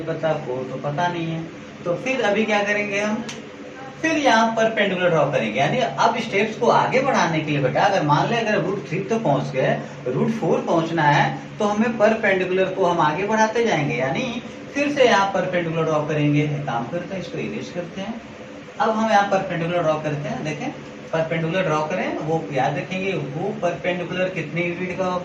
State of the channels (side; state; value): both; identical; correlation 1.00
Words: पता, 4 तो पता नहीं है। तो फिर अभी क्या करेंगे हम? फिर यहाँ पर परपेंडिकुलर ड्रॉ करेंगे। यानी अब स्टेप्स को आगे बढ़ाने के लिए बेटा, अगर मान ले अगर √3 तो पहुंच गए, √4 पहुंचना है, तो हमें परपेंडिकुलर को हम आगे बढ़ाते जाएंगे। यानी फिर से यहाँ परपेंडिकुलर ड्रॉ करेंगे। काम करते हैं, इसको इरेज करते हैं। अब हम यहाँ परपेंडिकुलर ड्रॉ करते हैं। देखें, परपेंडिकुलर ड्रॉ करें, वो याद रखेंगे वो परपेंडिकुलर कितने यूनिट का